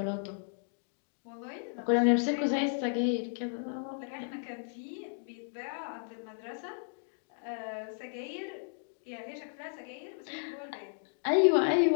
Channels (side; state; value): right; silent; digital silence